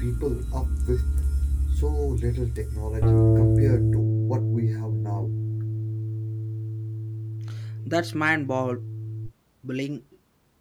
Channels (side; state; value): both; identical; correlation 1.00